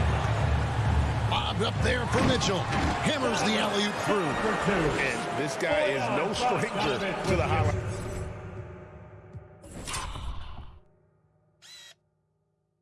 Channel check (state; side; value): identical; both; correlation 1.00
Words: Bob up there for Mitchell. Hammers the alley-oop through. And this guy is no stranger to the highlight.